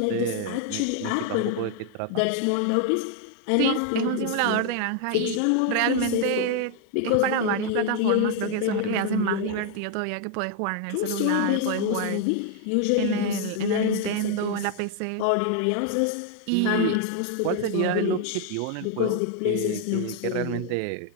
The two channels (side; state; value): both; different; correlation 0.00